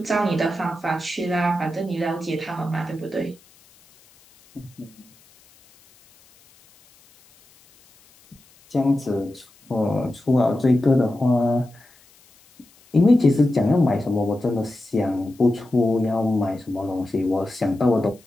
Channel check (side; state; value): left; noise; hiss, 29 dB below the sound